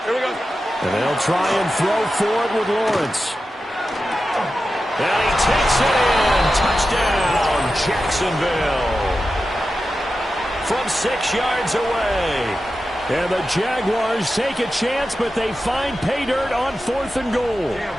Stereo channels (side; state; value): both; normal; correlation 0.92